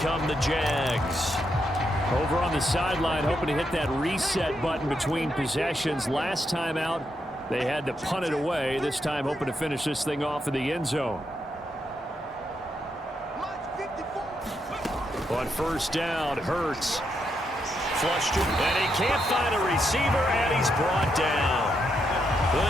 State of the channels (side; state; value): both; normal; correlation 0.81